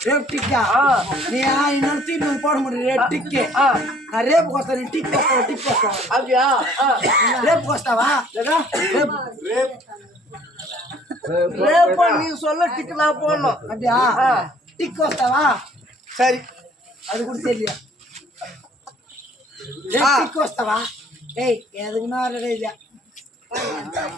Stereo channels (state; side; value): normal; both; correlation 0.57